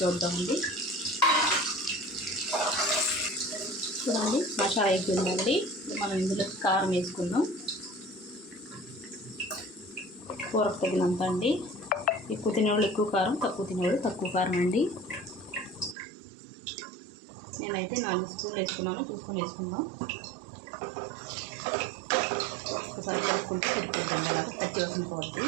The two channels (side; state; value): left; drops out; at 16.0 s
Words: చూద్దామండి. చూడండి, మసాలా అయిపోయిందండి. మనం ఇందులో కారం వేసుకుందాం. కూరకు తగినంత అండి. ఎక్కువ తినేవాళ్ళు ఎక్కువ కారం, తక్కువ తినేవాళ్ళు తక్కువ కారం అండి. నేనైతే 4 స్పూన్లు వేసుకున్నాను. చూసుకొని వేసుకుందాం. ఒకసారి కలుపుకుంటే సరిపోద్దండి. అలాగా పచ్చి వాసన పోద్ది.